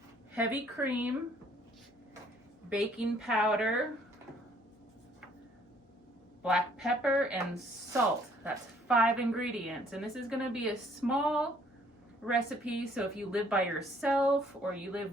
heavy cream, baking powder, black pepper, and salt. That's 5 ingredients, and this is gonna be a small recipe, so if you live by yourself or you live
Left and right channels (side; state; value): both; normal; correlation 0.62